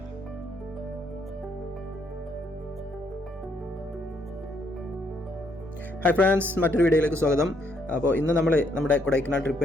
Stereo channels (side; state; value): both; normal; correlation 0.71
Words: ഹായ് ഫ്രണ്ട്സ്, മറ്റൊരു വീഡിയോയിലേക്ക് സ്വാഗതം. അപ്പോൾ ഇന്ന് നമ്മൾ നമ്മുടെ കൊടൈക്കനാൽ